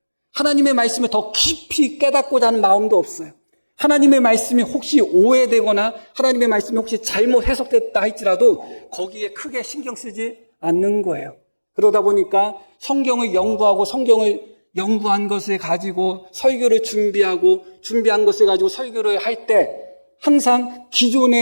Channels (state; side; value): inverted; both; correlation -1.00